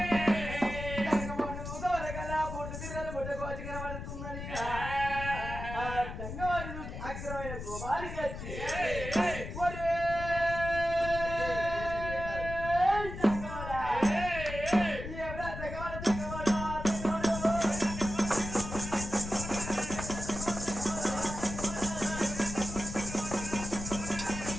పూర్తి పిల్లలు పుట్టకోచి కనబడుతుందని తంగమోడి చూసి అగ్రమైన కోపానికి వచ్చి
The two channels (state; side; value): noise; left; rumble, 8 dB below the sound